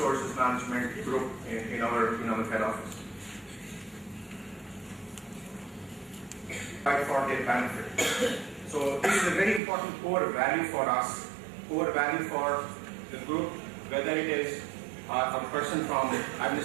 management group in our head office. For their benefit. So this is a very important core value for us, core value for the group, whether it is a person from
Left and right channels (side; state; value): left; drops out; at 9.6 s